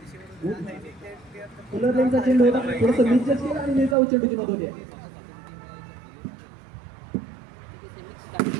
फुलरलेनचा चेंडू होता थोडंसं निश्चित केला आणि निर्धाव चेंडूची नोंद होते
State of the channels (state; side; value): drops out; left; at 4.0 s